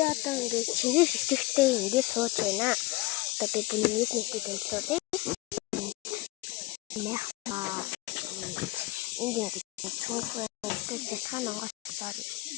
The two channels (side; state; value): right; quieter; 21.3 dB